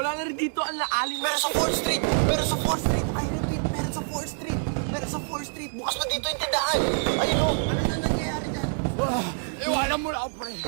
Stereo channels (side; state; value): left; silent; 61 dB below the other